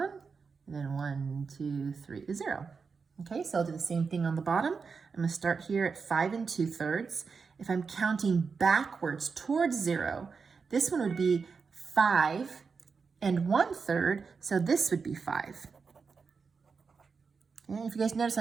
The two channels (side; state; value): left; quieter; 5.2 dB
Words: and then 1, 2, 3 is 0. Okay, so I'll do the same thing on the bottom. I'm going to start here at 5 2/3. If I'm counting backwards towards 0, this one would be 5 1/3, so this would be 5. Okay, if you guys notice,